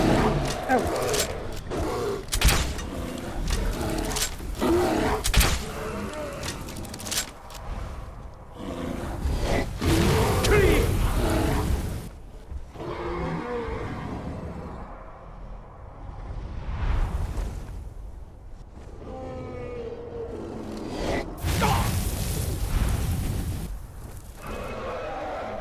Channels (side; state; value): both; identical; correlation 1.00